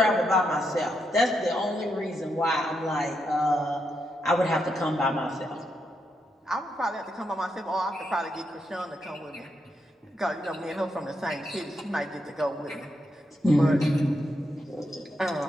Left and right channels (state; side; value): normal; both; correlation 0.82